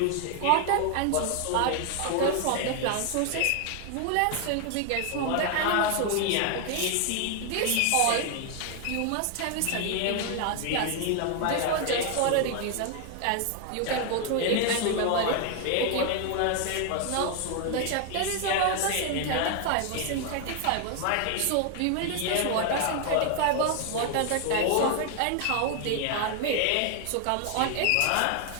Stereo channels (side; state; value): both; different; correlation 0.00